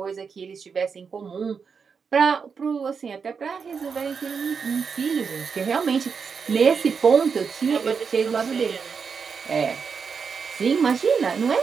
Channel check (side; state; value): left; quieter; 5.9 dB